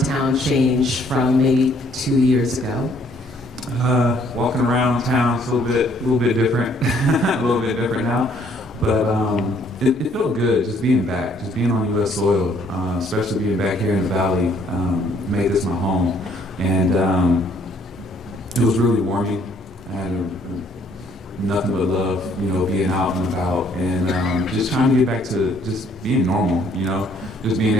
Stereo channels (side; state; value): both; normal; correlation 0.63